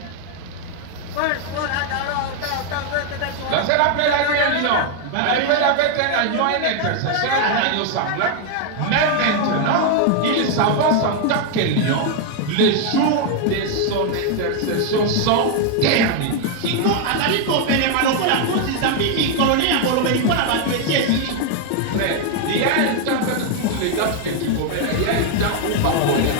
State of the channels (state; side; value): different; both; correlation 0.00